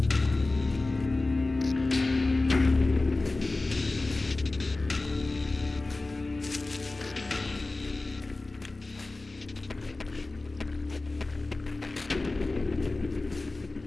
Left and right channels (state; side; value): quieter; right; 3.2 dB